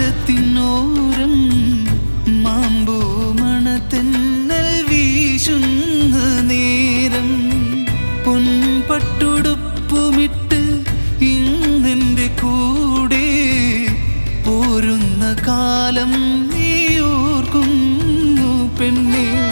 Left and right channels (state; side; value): inverted; both; correlation -1.00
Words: മാമ്പൂ മണത്തെന്നൽ വീശുന്ന നേരം പൊൻപട്ടുടുപ്പുമിട്ട് ഇന്നെൻ്റെ കൂടെ പോരുന്ന കാലം നീ ഓർക്കുന്നു പെണ്ണേ.